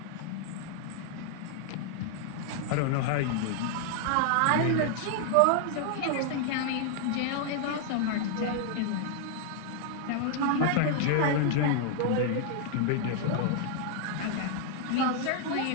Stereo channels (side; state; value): both; different; correlation 0.00